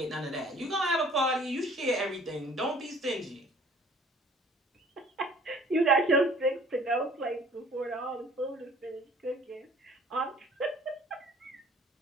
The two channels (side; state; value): both; normal; correlation 0.53